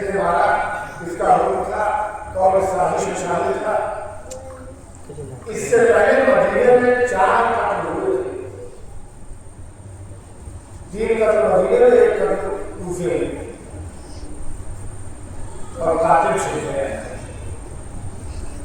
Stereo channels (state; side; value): identical; both; correlation 1.00